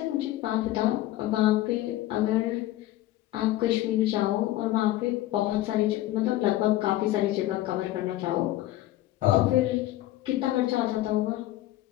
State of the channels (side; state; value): right; quieter; 15.4 dB